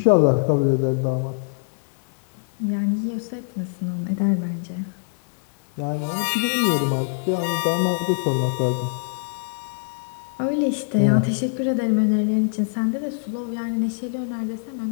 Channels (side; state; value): right; silent; digital silence